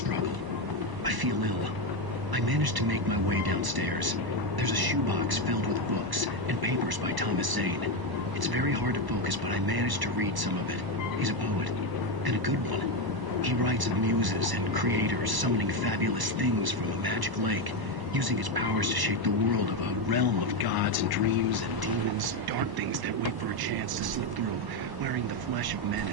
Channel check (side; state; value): left; late; 1.0 ms